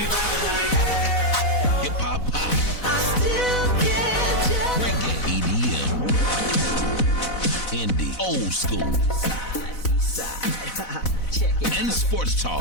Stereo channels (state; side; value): late; right; 4.0 ms